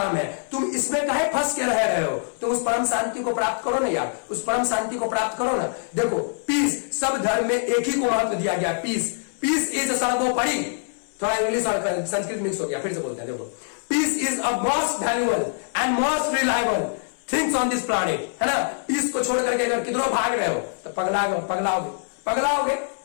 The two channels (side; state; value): right; silent; 63 dB below the other